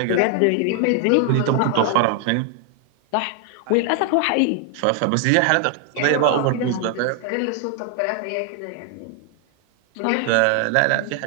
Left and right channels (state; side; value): different; both; correlation 0.00